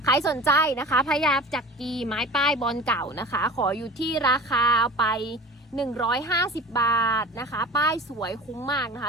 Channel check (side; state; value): both; normal; correlation 0.38